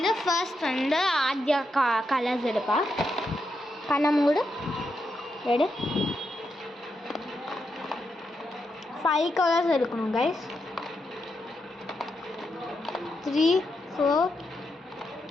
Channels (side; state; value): both; normal; correlation 0.84